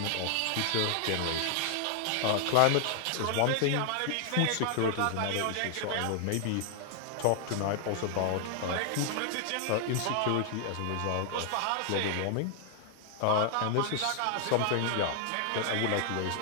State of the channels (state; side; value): different; both; correlation 0.00